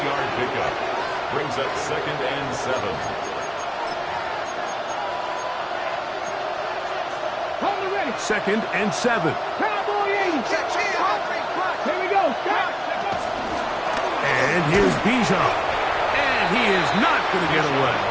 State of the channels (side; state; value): both; identical; correlation 1.00